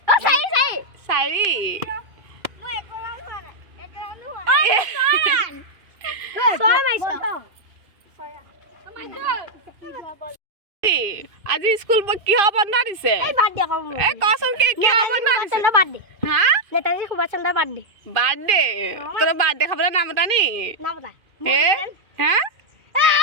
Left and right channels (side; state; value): left; late; 2.5 ms